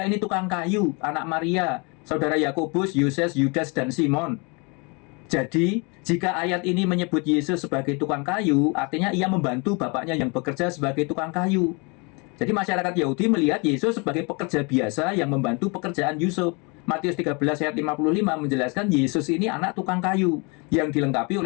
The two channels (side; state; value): right; quieter; 31.0 dB